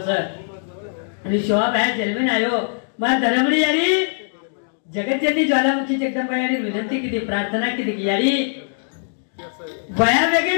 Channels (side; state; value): right; silent; digital silence